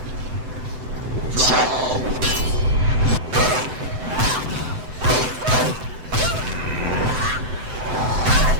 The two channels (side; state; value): left; late; 7.9 ms